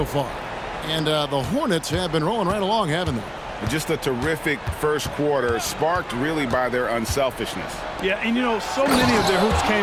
far. And the Hornets have been rolling right along, haven't they? Just a terrific first quarter, sparked really by their unselfishness. Yeah, and you know, so many of their hoops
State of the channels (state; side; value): identical; both; correlation 1.00